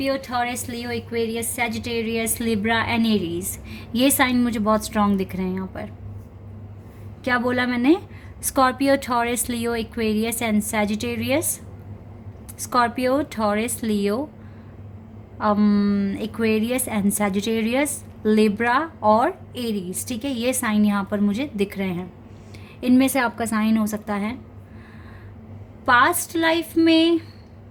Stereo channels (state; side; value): identical; both; correlation 1.00